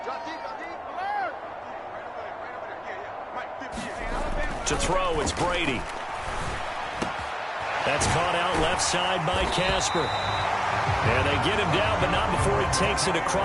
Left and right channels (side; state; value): both; identical; correlation 1.00